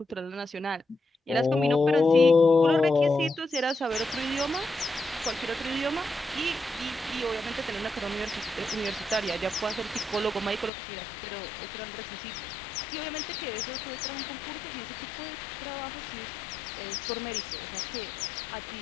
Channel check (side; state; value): right; drops out; at 10.7 s